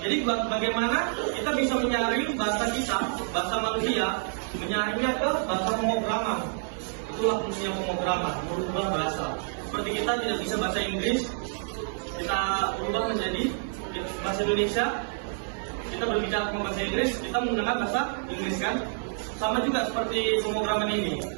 Jadi bagaimana kita bisa menyaring bahasa kita, bahasa manusia, menyaringnya ke bahasa pemrograman. Itulah fungsinya pemrograman, merubah bahasa. Seperti kita tidak bisa bahasa Inggris, kita ubah menjadi bahasa Indonesia. Kita berbicara dengan bahasa Inggris, kita menggunakan bahasa Inggris kan. Sama juga seperti pemrograman ini.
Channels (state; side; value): silent; left; digital silence